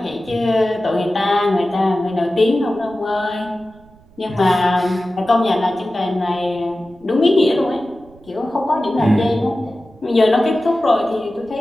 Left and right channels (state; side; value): noise; right; rumble, 27 dB below the sound